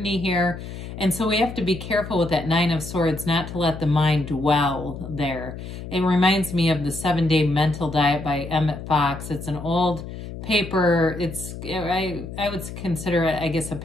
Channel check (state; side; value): noise; left; hum, 10 dB below the sound